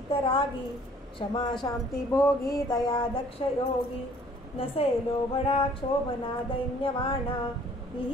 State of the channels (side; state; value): both; normal; correlation 0.57